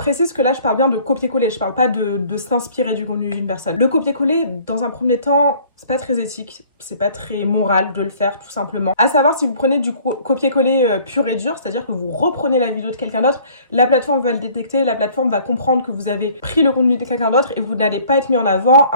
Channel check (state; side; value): inverted; both; correlation -0.54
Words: que là je parle bien de copier-coller, je parle pas de s'inspirer du contenu d'une personne. Le copier-coller, dans un premier temps, c'est pas très éthique, c'est pas très moral de le faire tout simplement. À savoir, si vous prenez du copier-coller pur et dur, c'est-à-dire que vous reprenez la vidéo de quelqu'un d'autre, la plateforme va le détecter, la plateforme va comprendre que vous avez pris le contenu de quelqu'un d'autre et vous n'allez pas être mis en avant.